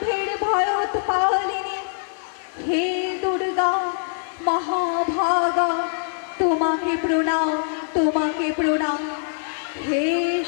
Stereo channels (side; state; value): right; silent; digital silence